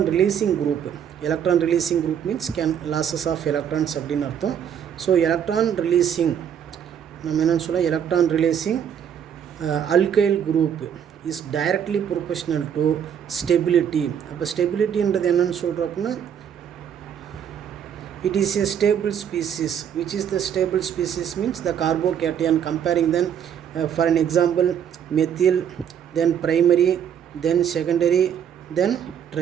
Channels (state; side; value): quieter; left; 8.6 dB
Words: releasing group means can losses of electrons அப்படின்னு அர்த்தம். So electron releasing நம்ம என்னன்னு சொல்ல, electron releasing alkyl group is directly proportional to stability. அப்போ ஸ்டெபிலிட்டின்றது என்னன்னு சொல்கிறோம் அப்படின்னா, it is a stable species. Which is the stable species means the carbocation. Comparing then for an example methyl, then primary, then secondary, then